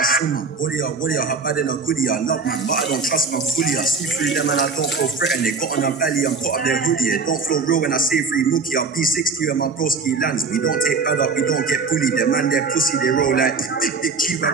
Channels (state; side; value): quieter; left; 4.6 dB